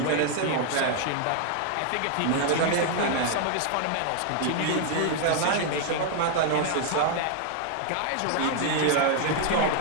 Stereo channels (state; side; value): different; both; correlation 0.00